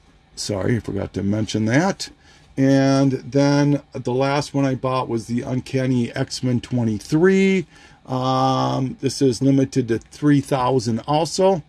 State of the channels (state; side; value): identical; both; correlation 1.00